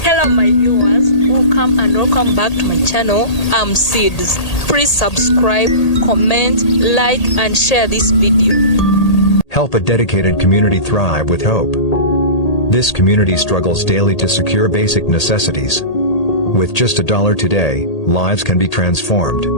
Hello my viewers, welcome back to my channel. I'm Seeds. Please subscribe, comment, like and share this video. Help a dedicated community thrive with hope. This community struggles daily to secure basic necessities. With just $1 today, lives can be transformed.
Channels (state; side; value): late; right; 1.8 ms